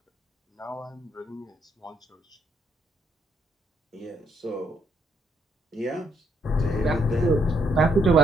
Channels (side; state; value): both; normal; correlation 0.73